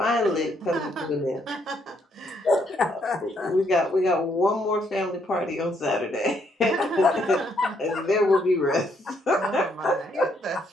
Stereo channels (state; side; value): normal; both; correlation 0.72